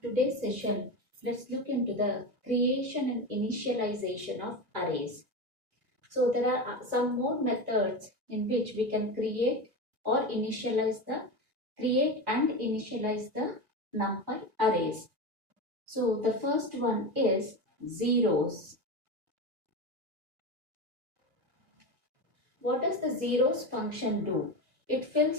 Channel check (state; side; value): late; left; 1.7 ms